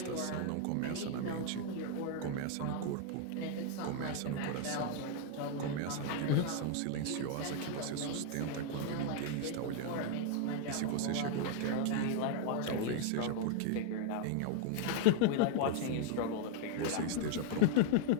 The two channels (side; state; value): both; different; correlation 0.00